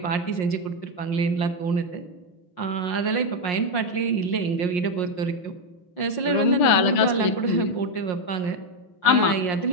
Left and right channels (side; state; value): right; late; 5.6 ms